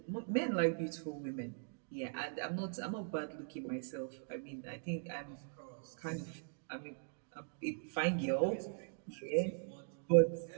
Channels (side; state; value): left; silent; digital silence